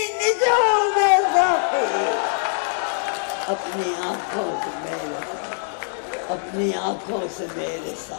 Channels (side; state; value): right; silent; digital silence